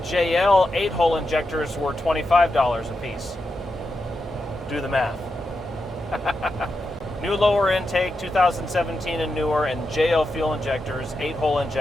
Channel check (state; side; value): normal; both; correlation 0.87